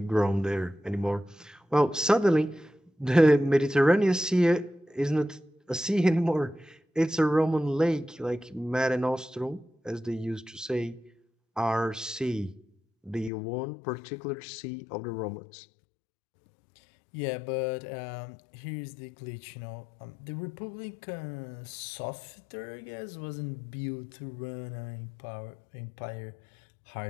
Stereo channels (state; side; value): drops out; right; at 13.3 s